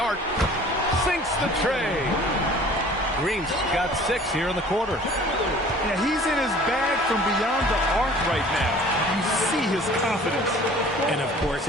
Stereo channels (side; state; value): both; normal; correlation 0.49